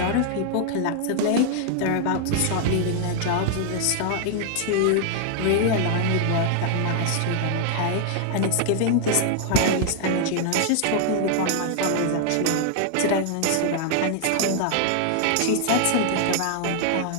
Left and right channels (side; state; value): both; different; correlation 0.00